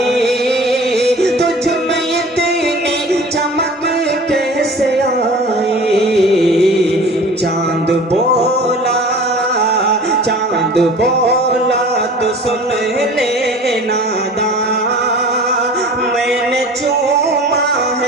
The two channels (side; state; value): both; normal; correlation 0.42